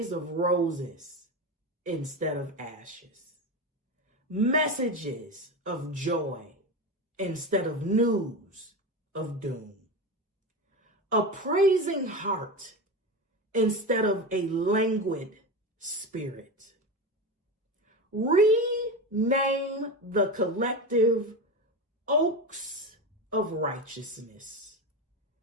of roses instead of ashes, messages of joy instead of news of doom, a praising heart instead of a languid spirit. Rename the collective oaks of righteousness,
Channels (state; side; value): normal; both; correlation 0.21